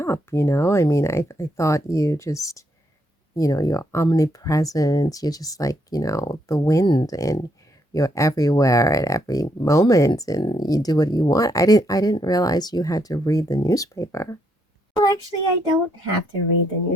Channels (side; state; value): both; normal; correlation 0.75